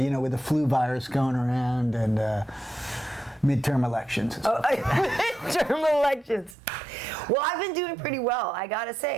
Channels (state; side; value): drops out; left; at 6.6 s